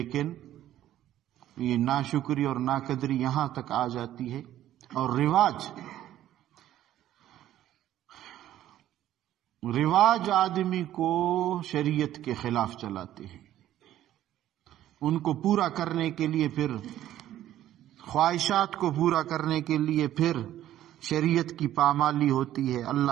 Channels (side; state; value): left; quieter; 12.7 dB